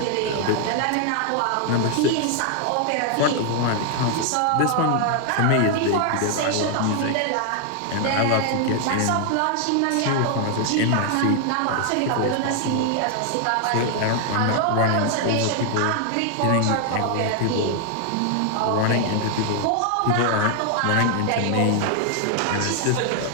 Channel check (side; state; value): both; different; correlation 0.00